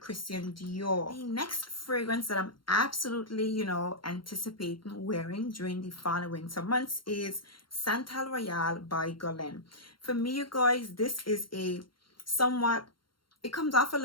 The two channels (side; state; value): right; late; 0.73 ms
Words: Dior. The next fragrance that I'm absolutely, you know, anticipating wearing during the fall and winter months is Santal Royale by Guerlain. For me, you guys, this is a somewhat, it comes off a